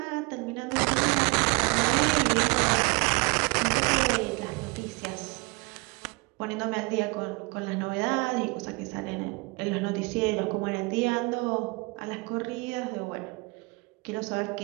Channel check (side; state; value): left; quieter; 28.1 dB